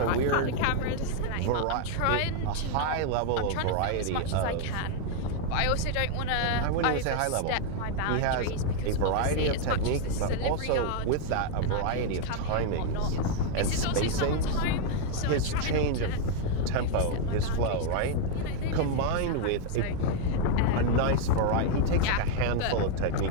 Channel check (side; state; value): both; different; correlation 0.00